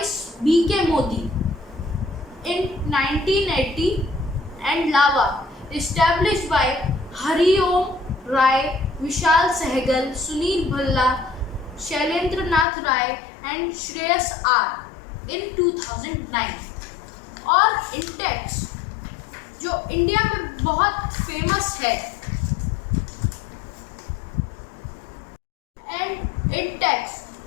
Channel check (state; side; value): drops out; right; at 12.7 s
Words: BK Modi in 1980 and Lava established by Hariom Rai, Vishal Sehgal, Sunil Bhalla, Shailendra Nath Rai and Shreyas R in 2009। और इंटेक्स, जो इंडिया में बहुत फेमस है, and Intex